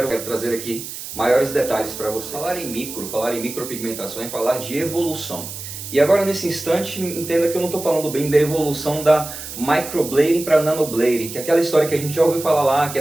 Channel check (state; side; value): noise; right; hiss, 10 dB below the sound